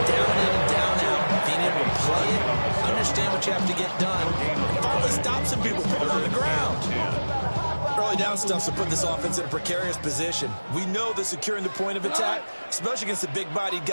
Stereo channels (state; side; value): inverted; both; correlation -1.00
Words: in, down out. Being able to play it, understand what you have to get done, and finally stop some people, put them on the ground. Early down stuff to put this offense in a precarious position. We know that securing the point of attack, especially against the big-bodied